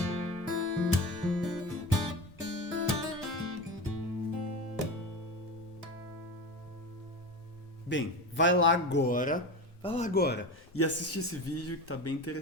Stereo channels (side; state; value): both; normal; correlation 0.26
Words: Bem, vai lá agora e assiste esse vídeo que tá bem